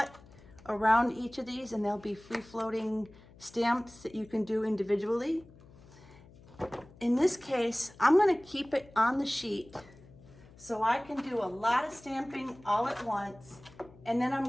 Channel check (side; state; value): left; noise; hum, 23 dB below the sound